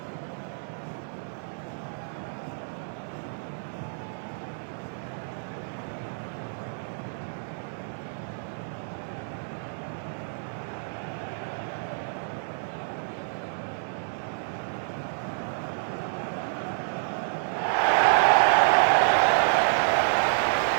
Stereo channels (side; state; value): left; silent; digital silence